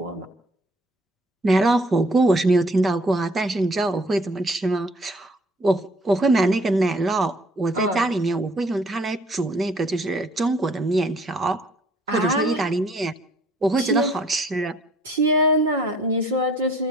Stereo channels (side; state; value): both; normal; correlation 0.59